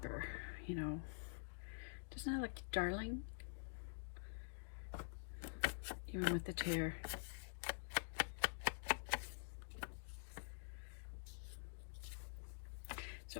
you know. Doesn't that look darling? Even with the tear.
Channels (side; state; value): right; silent; digital silence